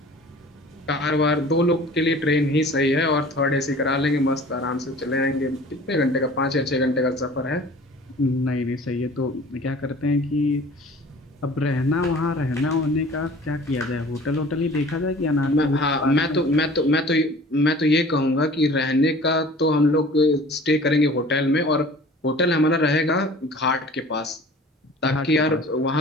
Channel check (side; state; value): both; normal; correlation 0.46